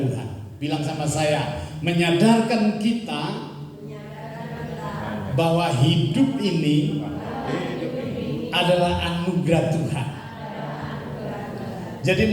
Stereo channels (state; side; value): identical; both; correlation 1.00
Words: Bilang sama saya, menyadarkan kita bahwa hidup ini adalah anugerah Tuhan.